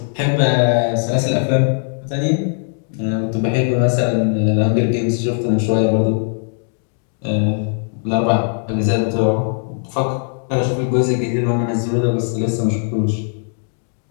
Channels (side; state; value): right; silent; 59 dB below the other